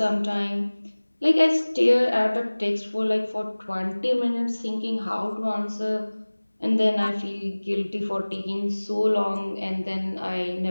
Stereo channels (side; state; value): both; inverted; correlation -1.00